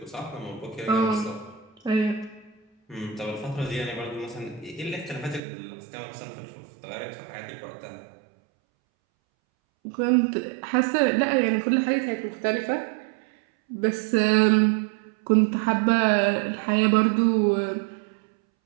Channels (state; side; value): drops out; left; at 5.4 s